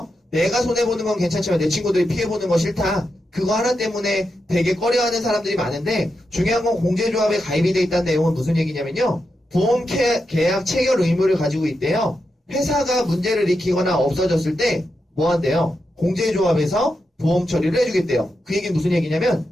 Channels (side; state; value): both; normal; correlation 0.87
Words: 내가 손해보는 건 괜찮지만 내 친구들이 피해보는 거 싫다. 그거 하나 때문에 되게 꺼려하는 사람들이 많은데, 중요한 건 공제조합에 가입이 돼 있다는 내용은 무슨 얘기냐면요. 보험 계약 체결 의무를 가지고 있대요. 회사가 문제를 일으키거나 없어졌을 때 뭐 한대요? 공제조합에서 보험 처리를 해주겠대요. 그 얘기는 무슨 얘기냐면